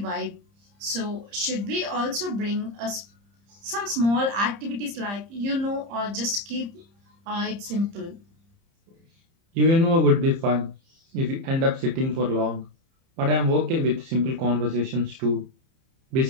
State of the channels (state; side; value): late; left; 30 ms